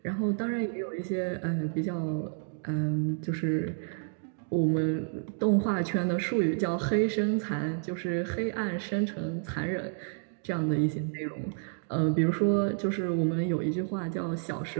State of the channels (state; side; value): silent; left; digital silence